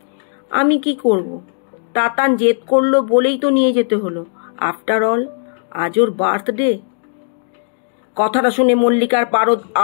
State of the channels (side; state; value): right; silent; digital silence